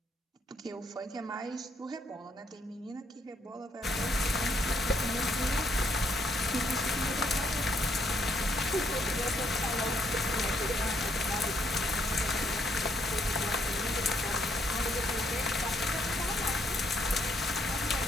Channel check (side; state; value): both; normal; correlation 0.72